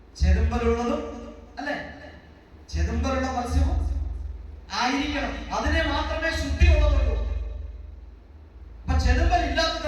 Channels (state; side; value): identical; both; correlation 1.00